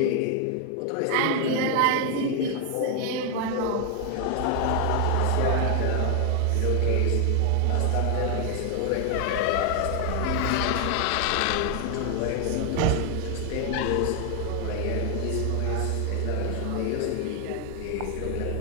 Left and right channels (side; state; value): both; different; correlation 0.00